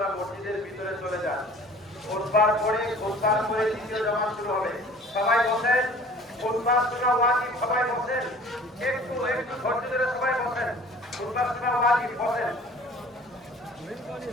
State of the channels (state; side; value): normal; both; correlation 0.48